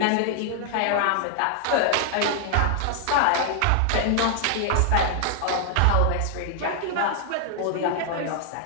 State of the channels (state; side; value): different; both; correlation 0.00